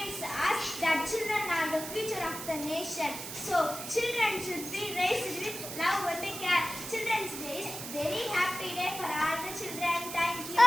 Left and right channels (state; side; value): noise; right; hiss, 8 dB below the sound